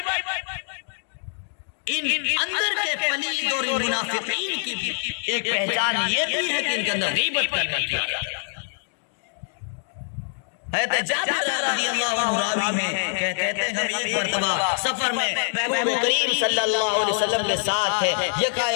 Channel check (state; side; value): silent; right; digital silence